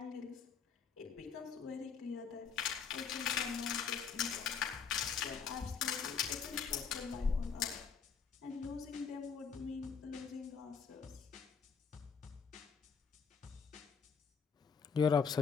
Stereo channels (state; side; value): quieter; right; 6.2 dB